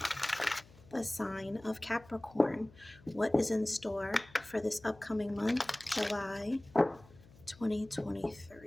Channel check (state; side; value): noise; left; hum, 24 dB below the sound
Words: the sign of Capricorn. What is in store for this upcoming month, July